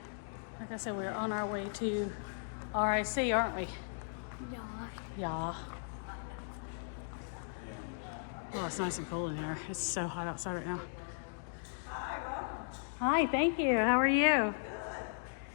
Like I said, we're on our way to RIC, aren't we? Yeah. Oh, it's nice and cool in here. It's so hot outside right now. Hi, thank you. How are you?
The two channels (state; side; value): silent; right; digital silence